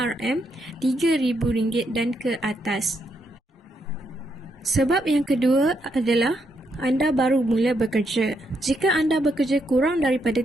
dan ke atas. Sebab yang kedua adalah anda baru mula bekerja. Jika anda bekerja kurang daripada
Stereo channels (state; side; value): normal; both; correlation 0.78